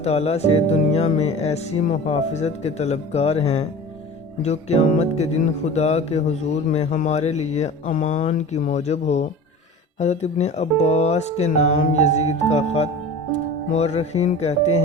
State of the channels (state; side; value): normal; both; correlation 0.36